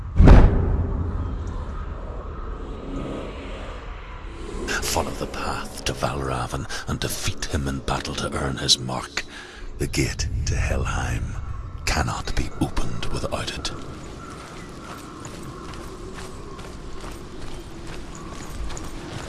Follow the path to Valravn and defeat him in battle to earn his mark. The gate to Helheim cannot be opened without it.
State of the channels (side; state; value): both; identical; correlation 1.00